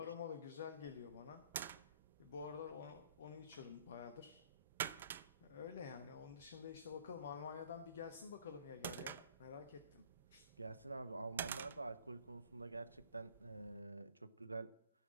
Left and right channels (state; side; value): inverted; both; correlation -0.55